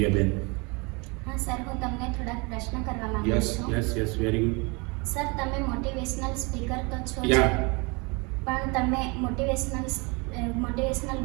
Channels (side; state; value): left; quieter; 29.0 dB